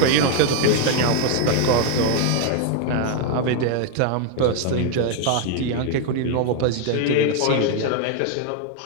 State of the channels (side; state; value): both; different; correlation 0.01